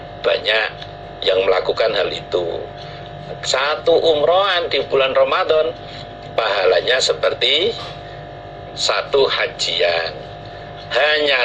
banyak yang melakukan hal itu. Satu umrohan di bulan Ramadan pahalanya seperti satu hajian. Hanya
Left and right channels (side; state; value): both; identical; correlation 1.00